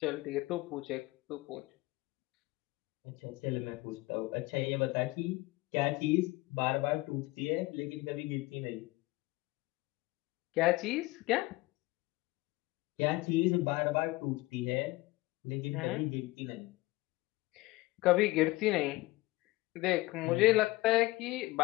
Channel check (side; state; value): right; quieter; 20.4 dB